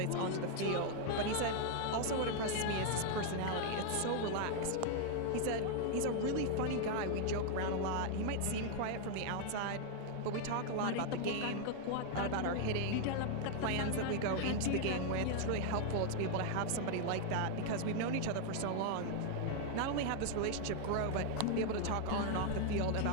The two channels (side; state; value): both; different; correlation 0.00